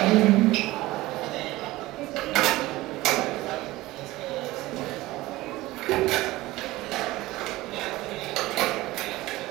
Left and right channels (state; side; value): quieter; left; 18.4 dB